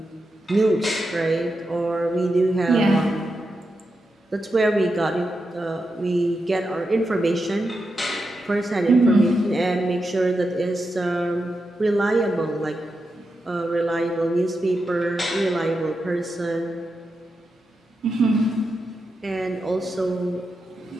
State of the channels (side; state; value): both; normal; correlation 0.87